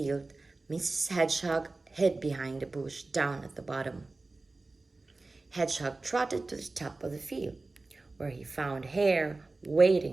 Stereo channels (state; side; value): quieter; left; 3.4 dB